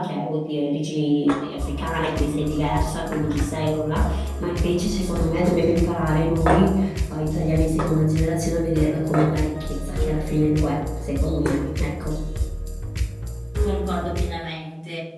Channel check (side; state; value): both; identical; correlation 1.00